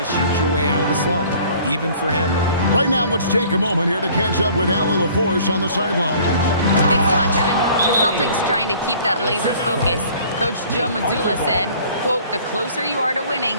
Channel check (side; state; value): both; inverted; correlation -0.52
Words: shoot your way out of the slump, even for him. Right now, let's take a moment here to catch up with Allie LaForce on the sidelines. Thanks a lot, Kevin. The Celtics trying to keep that laser focus. Coach Joe Mazzulla said, quote, "The closer you are to